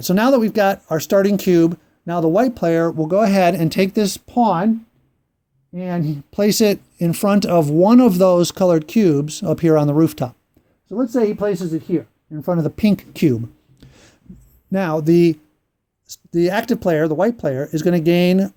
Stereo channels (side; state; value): both; identical; correlation 1.00